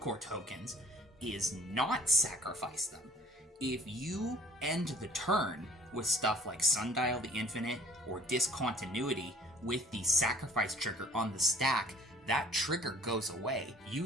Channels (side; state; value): both; normal; correlation 0.53